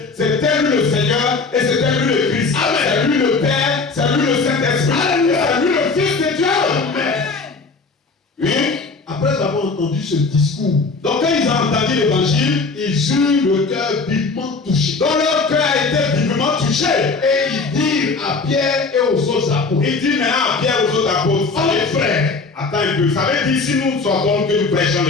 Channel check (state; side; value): quieter; right; 4.2 dB